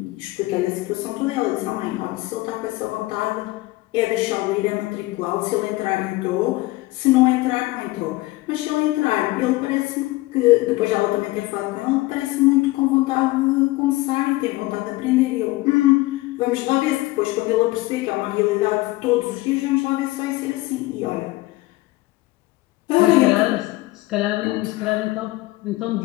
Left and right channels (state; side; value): quieter; right; 19.7 dB